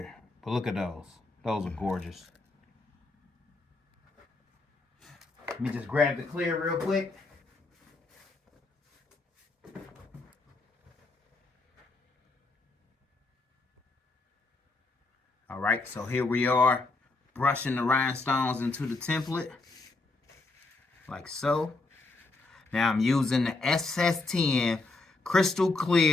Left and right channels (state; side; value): quieter; right; 3.4 dB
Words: But look at those. Those are gorgeous. Let me just grab the clear real quick. All right, so here we are, brushing the rhinestones into the template, like so. Now I'm using the SS10 crystal